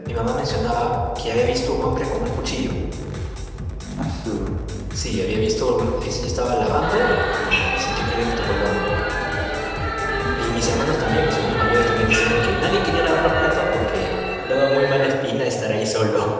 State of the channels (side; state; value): both; identical; correlation 1.00